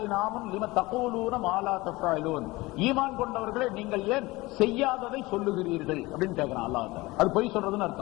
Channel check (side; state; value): right; quieter; 21.3 dB